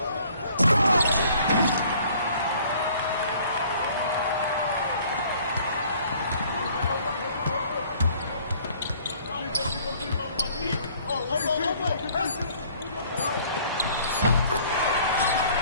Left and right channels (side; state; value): both; inverted; correlation -0.56